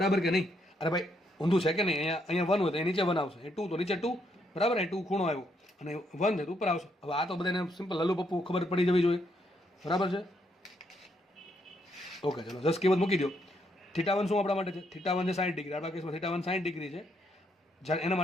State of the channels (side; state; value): both; normal; correlation 0.75